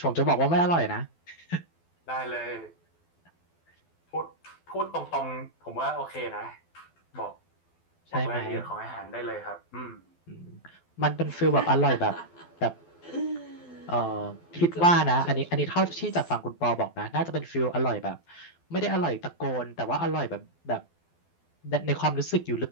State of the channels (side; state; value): right; late; 12 ms